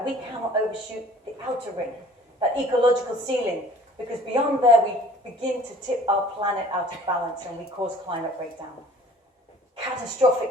we cannot overshoot the outer ring, that ecological ceiling, because beyond there we begin to tip our planet out of balance and we cause climate breakdown.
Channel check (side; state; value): both; normal; correlation 0.50